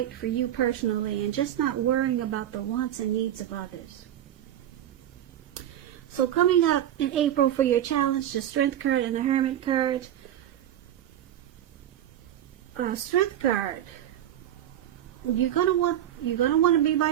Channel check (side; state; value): left; quieter; 11.3 dB